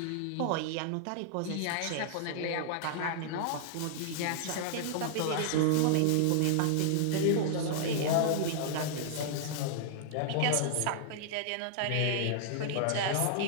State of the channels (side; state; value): both; different; correlation -0.01